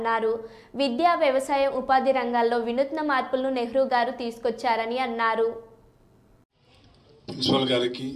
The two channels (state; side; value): identical; both; correlation 1.00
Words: విద్యా, వ్యవసాయం, ఉపాధి రంగాల్లో వినూత్న మార్పులను నెహ్రూ గారు తీసుకొచ్చారని అన్నారు. ప్రిన్సిపల్ గారికి,